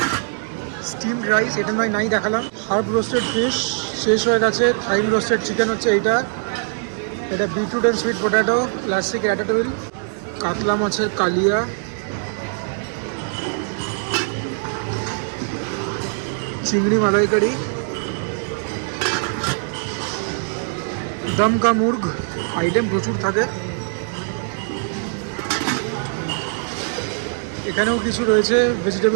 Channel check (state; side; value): silent; left; digital silence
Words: স্টিমড রাইস, এটা নয় নাই দেখালাম। হার্ব রোস্টেড ফিশ শেষ হয়ে গেছে। থাইম রোস্টেড চিকেন হচ্ছে এইটা। এটা beetroot and sweet potato, classic ratatouille. কাতলা মাছের কালিয়া, চিংড়ি মালাইকারি, দমকা মুর্গ। আইটেম প্রচুর থাকে। এখানেও কিছু রয়েছে